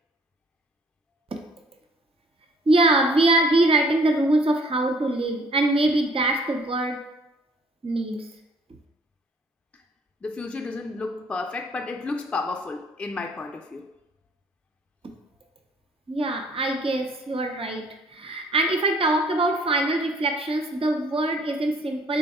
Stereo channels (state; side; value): normal; both; correlation 0.59